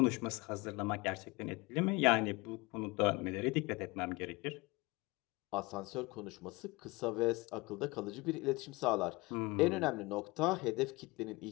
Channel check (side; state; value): right; quieter; 24.0 dB